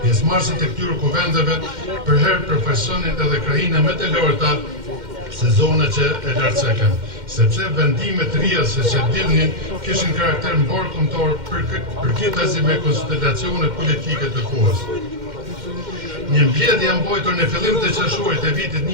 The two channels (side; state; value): left; late; 2.1 ms